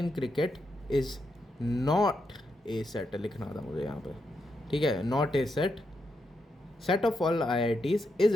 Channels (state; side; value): normal; both; correlation 0.83